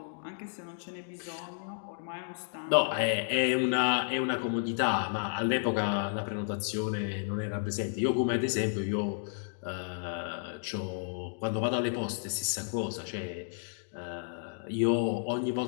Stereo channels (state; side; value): silent; right; digital silence